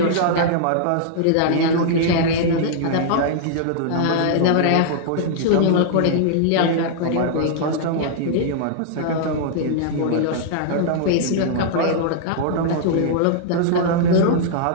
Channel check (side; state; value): both; different; correlation -0.01